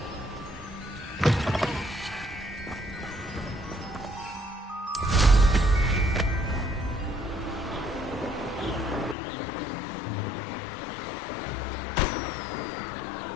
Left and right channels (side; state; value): right; drops out; at 9.2 s